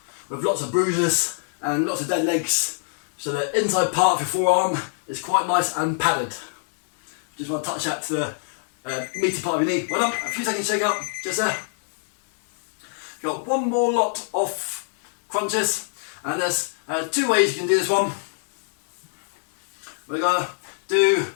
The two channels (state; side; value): silent; right; 63 dB below the other